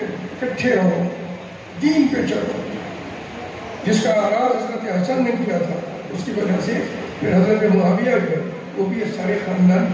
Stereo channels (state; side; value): identical; both; correlation 1.00